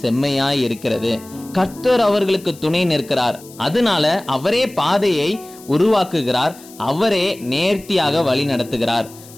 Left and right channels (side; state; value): left; noise; hiss, 21 dB below the sound